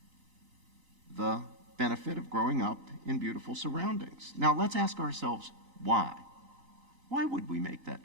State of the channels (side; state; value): left; late; 3.9 ms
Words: the benefit of growing up in beautiful surroundings. Now let's ask ourselves, why? Why would we make that